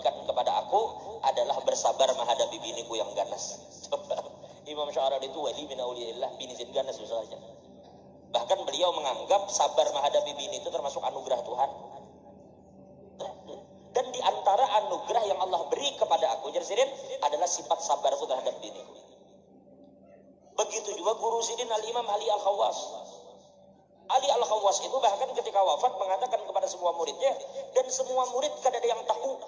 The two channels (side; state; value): both; identical; correlation 1.00